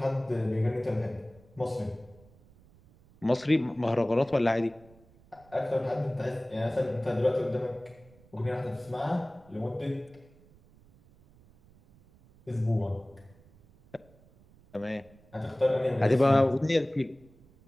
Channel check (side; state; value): right; noise; rumble, 27 dB below the sound